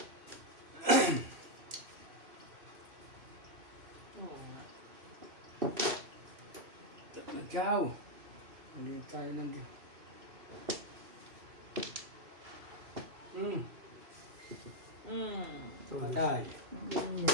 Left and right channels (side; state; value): left; late; 3.0 ms